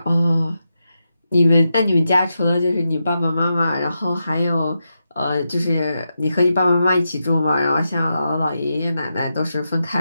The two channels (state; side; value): inverted; both; correlation -0.87